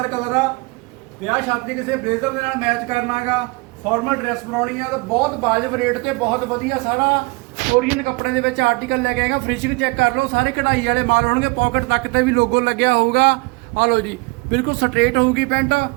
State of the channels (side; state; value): left; quieter; 26.1 dB